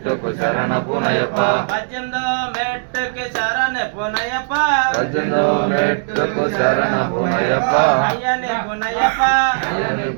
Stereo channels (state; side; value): silent; left; digital silence